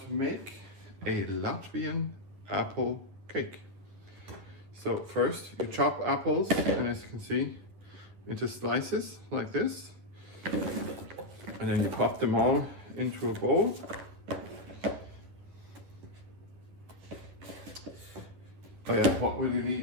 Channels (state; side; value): late; left; 10 ms